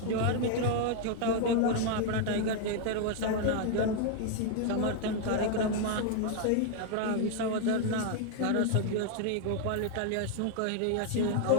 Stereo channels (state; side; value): different; both; correlation 0.00